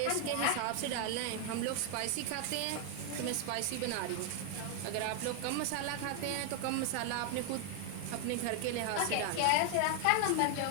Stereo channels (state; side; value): different; both; correlation 0.00